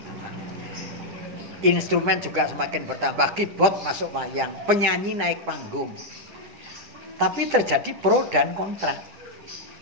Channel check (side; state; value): left; late; 10 ms